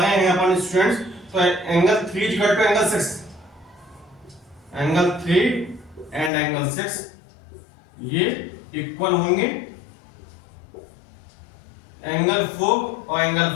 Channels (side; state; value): right; drops out; at 6.3 s